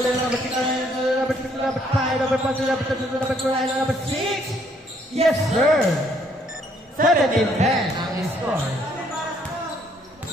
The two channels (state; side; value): normal; both; correlation 0.67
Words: number 6. Number 6. Number 5. Number 5. Number 2. Number 3. Number 6. Yes, sir. 17-10 ang score.